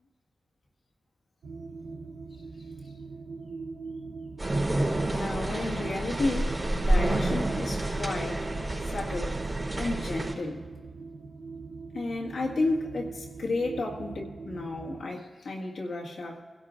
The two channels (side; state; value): both; normal; correlation 0.93